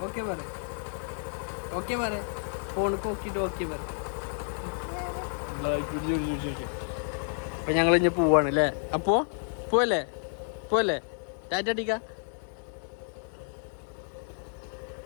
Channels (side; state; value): right; silent; 58 dB below the other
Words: ഓക്കെ പറ ഫോണിക്ക് നോക്കിയിട്ട് ഓക്കെ പറ. അപ്പൊ ഞങ്ങൾ ഇനി പോവാണ് അല്ലേ? അപ്പോ പോവല്ലേ ടാറ്റ അടിക്ക.